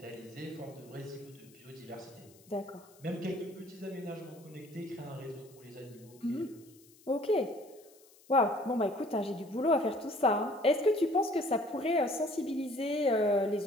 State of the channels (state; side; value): noise; left; hiss, 26 dB below the sound